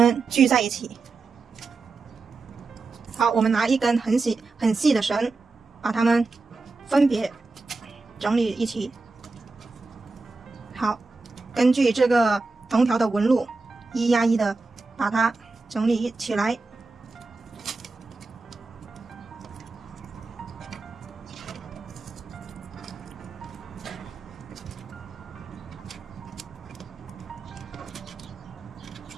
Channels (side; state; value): left; quieter; 3.9 dB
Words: 聚在一起。好，我们拿一根很细的绳，把它们分别整理一起。好，根据这个藤条的纹路1压1的把它整理起来。